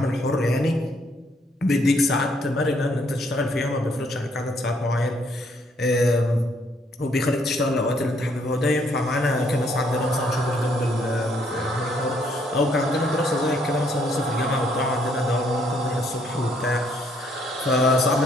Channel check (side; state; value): both; normal; correlation 0.69